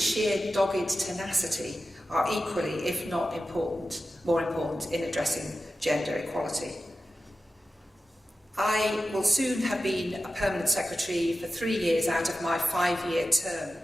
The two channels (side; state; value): both; normal; correlation 0.93